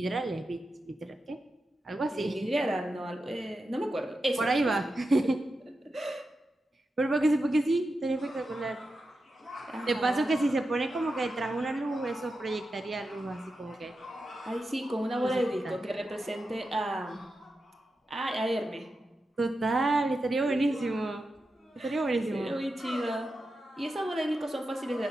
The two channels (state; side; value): normal; both; correlation 0.90